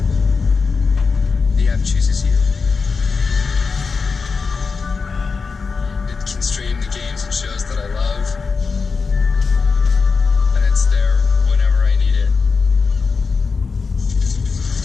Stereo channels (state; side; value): quieter; right; 4.8 dB